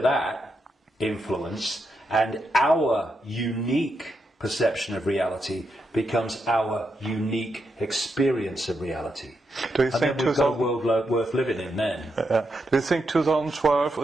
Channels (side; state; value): both; normal; correlation 0.83